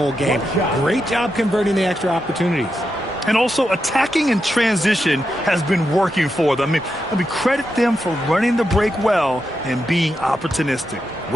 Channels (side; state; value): both; normal; correlation 0.86